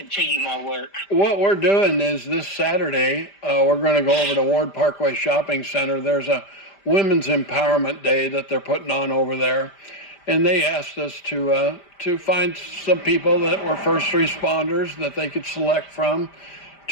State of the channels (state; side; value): late; right; 5.0 ms